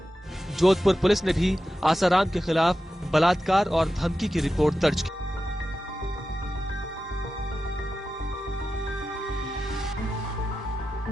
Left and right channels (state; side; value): normal; both; correlation 0.92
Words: जोधपुर पुलिस ने भी आसाराम के खिलाफ बलात्कार और धमकी की रिपोर्ट दर्ज की।